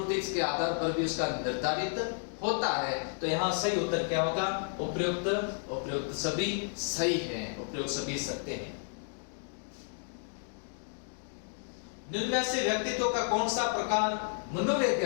के आधार पर भी उसका निर्धारित होता है। तो यहाँ सही उत्तर क्या होगा? उपयुक्त सभी सही है, उपयुक्त सभी सत्य है। निम्न से व्यक्तित्व का कौन सा प्रकार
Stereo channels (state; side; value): silent; right; 56 dB below the other